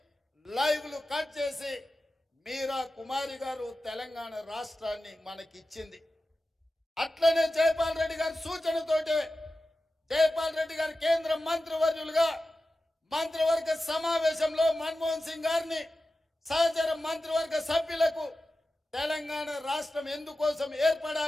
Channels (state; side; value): normal; both; correlation 0.94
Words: లైవ్లు కట్ చేసి మీరా కుమారి గారు తెలంగాణ రాష్ట్రాన్ని మనకిచ్చింది. అట్లనే జైపాల్ రెడ్డి గారి సూచనతోటే జైపాల్ రెడ్డి గారు కేంద్ర మంత్రివర్యులుగా మంత్రివర్గ సమావేశంలో మన్మోహన్ సింగ్ గారిని సహచర మంత్రివర్గ సభ్యులకు తెలంగాణ రాష్ట్రం ఎందుకోసం